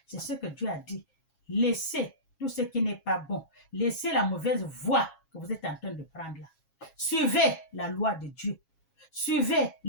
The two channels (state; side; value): late; right; 7.3 ms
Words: C'est ce que Dieu a dit. Laissez tout ce qui n'est pas bon. Laissez la mauvaise voie que vous êtes en train de prendre là. Suivez la loi de Dieu. Suivez